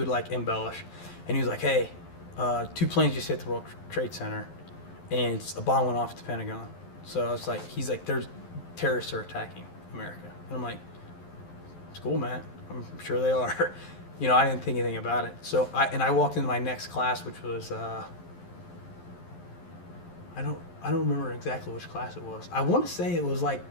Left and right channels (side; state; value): right; late; 11 ms